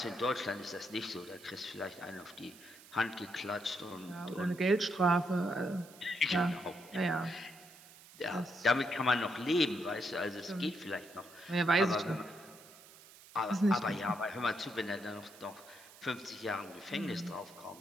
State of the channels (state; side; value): noise; right; hiss, 20 dB below the sound